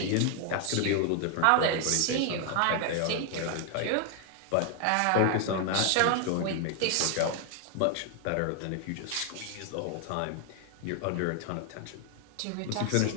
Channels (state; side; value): different; both; correlation 0.00